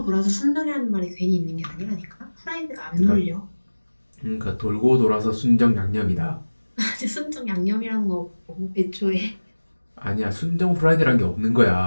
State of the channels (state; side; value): inverted; both; correlation -1.00